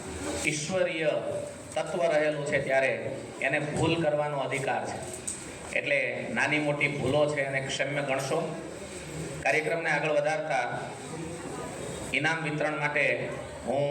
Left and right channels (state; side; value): identical; both; correlation 1.00